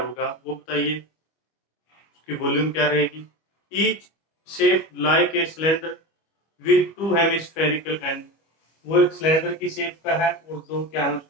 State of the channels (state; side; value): late; right; 25 ms